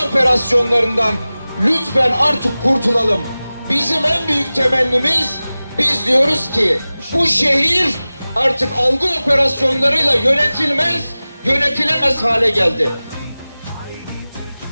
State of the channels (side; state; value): both; inverted; correlation -0.97